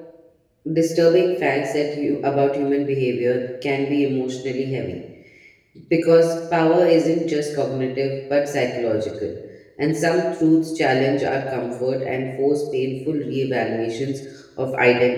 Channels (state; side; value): identical; both; correlation 1.00